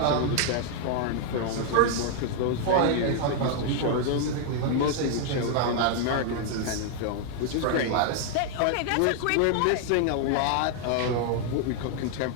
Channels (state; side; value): different; both; correlation 0.00